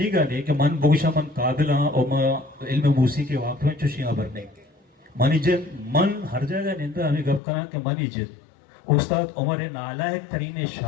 ने कि मन बोगशा मन काबिल और मैं इल्म मूसी के वाक़ में चुशियाँ भरने मन इज्जत मन हर जगह निंदा हमें गप करा कि मन इज्जत उस्ताद उमर नालायक तरीने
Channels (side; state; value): right; drops out; at 7.4 s